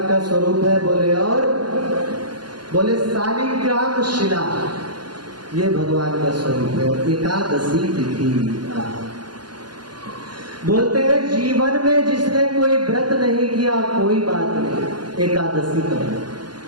का स्वरूप है। बोले और बोले शालिग्राम शिला, ये भगवान का स्वरूप है। एकादशी तिथि बोलते हैं जीवन में जिसने कोई व्रत नहीं किया कोई बात नहीं, एकादशी करो।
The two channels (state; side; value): late; left; 0.71 ms